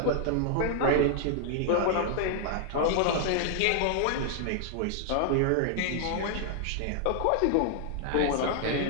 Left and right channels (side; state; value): both; different; correlation 0.00